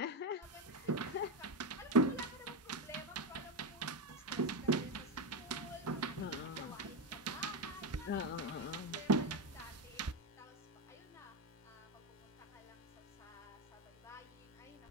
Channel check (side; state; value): both; normal; correlation 0.12